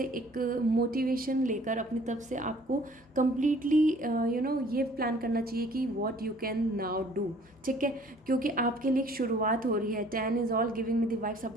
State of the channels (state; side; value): normal; both; correlation 0.55